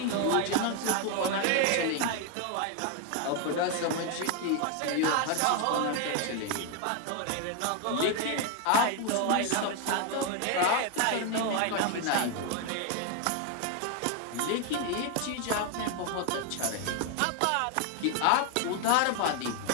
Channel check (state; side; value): different; both; correlation 0.01